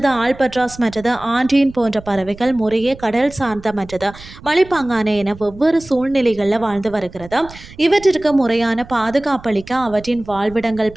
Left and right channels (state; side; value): noise; right; rumble, 18 dB below the sound